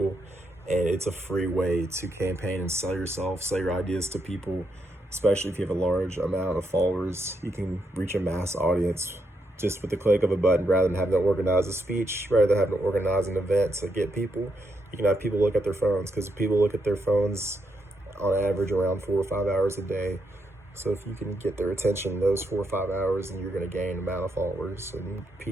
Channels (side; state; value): both; normal; correlation 0.80